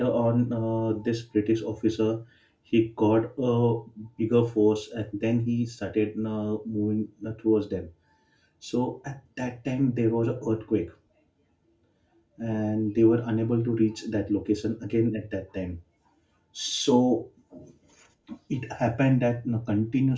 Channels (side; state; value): both; identical; correlation 1.00